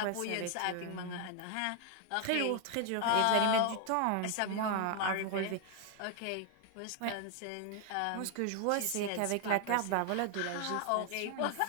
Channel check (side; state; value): both; different; correlation 0.00